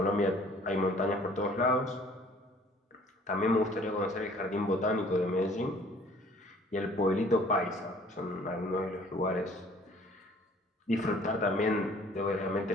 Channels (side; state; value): both; normal; correlation 0.54